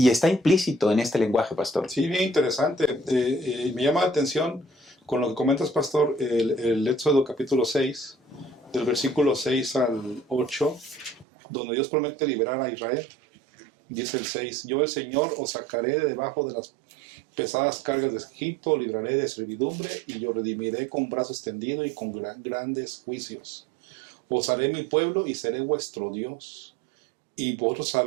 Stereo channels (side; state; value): left; drops out; at 11.2 s